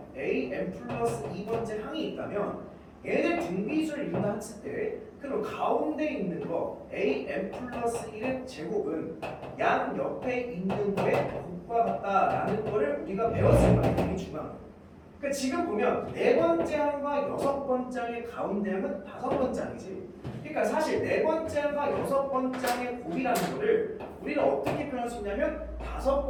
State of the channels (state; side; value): identical; both; correlation 1.00